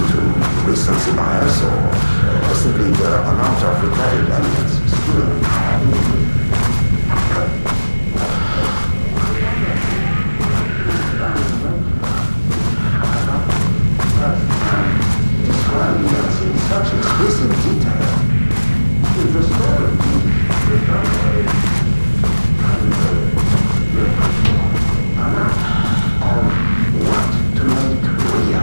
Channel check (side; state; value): both; inverted; correlation -1.00